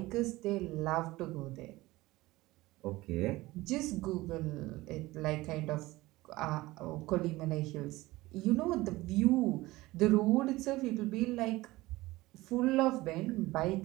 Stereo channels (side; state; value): left; quieter; 19.2 dB